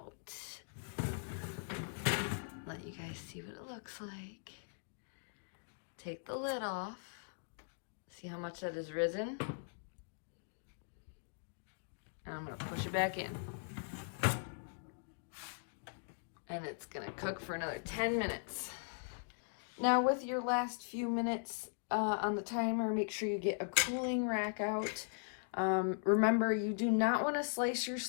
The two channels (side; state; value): right; silent; digital silence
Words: Let you guys see what it looks like. Take the lid off. See how much that has risen? And I'm gonna push it back in. And it's gonna cook for another 10 minutes. Now with your last few minutes on the timer, make sure you get a cooling rack out. Remember, you do not wanna slice your